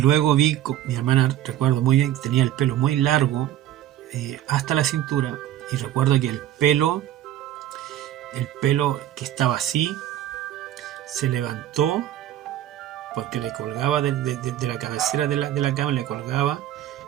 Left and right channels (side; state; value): left; quieter; 12.5 dB